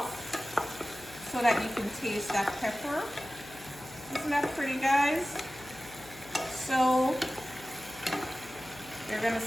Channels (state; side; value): noise; left; hum, 19 dB below the sound